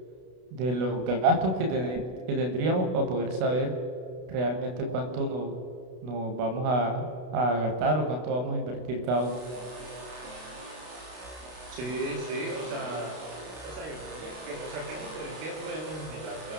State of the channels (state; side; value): late; left; 32 ms